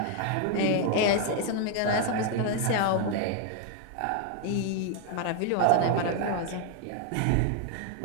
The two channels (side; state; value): both; different; correlation 0.00